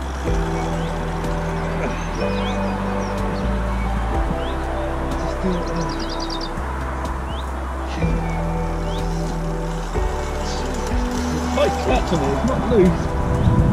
Just do what they love. It's quite clutch on it, it's not loose.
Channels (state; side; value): identical; both; correlation 1.00